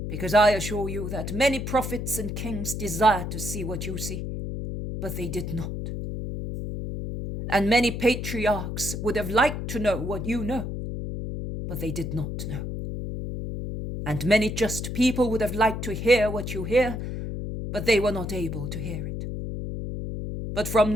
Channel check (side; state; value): left; noise; hum, 5 dB below the sound